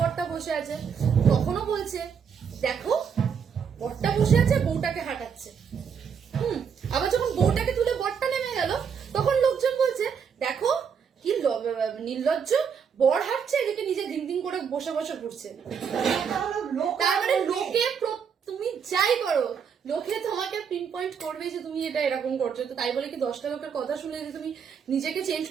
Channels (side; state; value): left; quieter; 6.9 dB